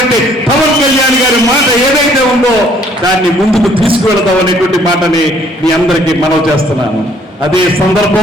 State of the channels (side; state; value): both; normal; correlation 0.61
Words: పవన్ కళ్యాణ్ గారి మాట ఏదైతే ఉందో దాన్ని ముందుకు తీసుకువెళదాం అనేటువంటి మాటని మీ అందరికీ మనవి చేస్తున్నాను. అదే